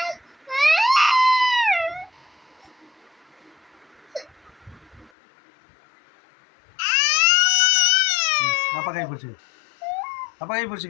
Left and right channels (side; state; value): right; drops out; at 5.1 s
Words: அப்பா கை பிடிச்சி, அப்பா கை